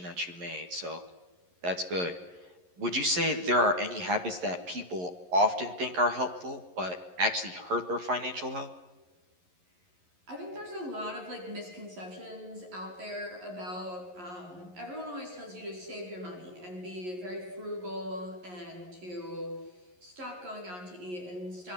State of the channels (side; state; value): left; late; 11 ms